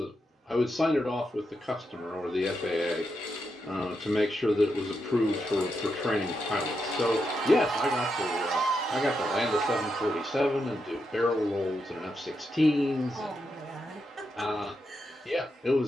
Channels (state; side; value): normal; both; correlation 0.84